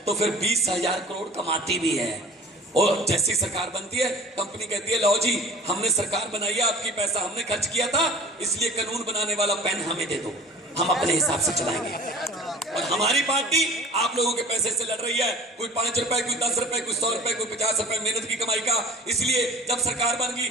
तो फिर 20,000 करोड़ कमाती भी है। और जैसी सरकार बनती है, कंपनी कहती है लो जी, हमने सरकार बनाई है, आपकी पैसा हमने खर्च किया था, इसलिए कानून बनाने वाला पेन हमें दे दो, हम अपने हिसाब से चलाएंगे। और हमारी पार्टी आप लोगों के पैसे से लड़ रही है, कोई 5 रुपए, कोई 10 रुपए, कोई 100 रुपए, कोई 50 रुपए मेहनत की कमाई का। इसलिए जब सरकार बन गई,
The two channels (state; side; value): normal; both; correlation 0.44